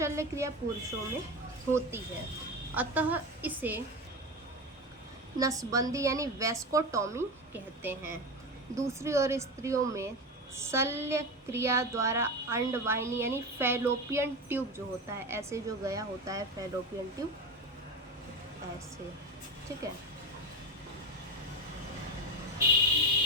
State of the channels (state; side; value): normal; both; correlation 0.21